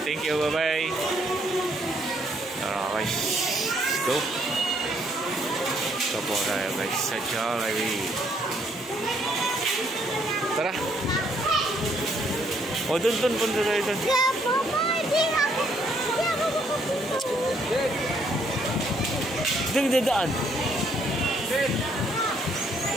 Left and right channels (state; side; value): normal; both; correlation 0.68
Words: you, bye-bye! Tara guys, let's go! Ito po tayo guys sa Jollibee. Tara! O, dun, punta tayo dun. Dun, dadaan.